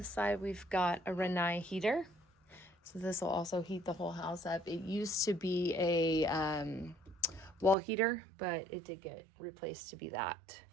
side. We've got a Renai heater. So this will also heat the whole house up. It used to be a wall heater, but it did get replaced to be that.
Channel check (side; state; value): left; drops out; at 7.8 s